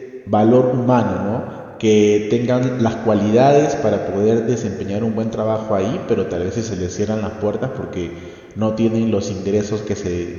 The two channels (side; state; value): both; identical; correlation 1.00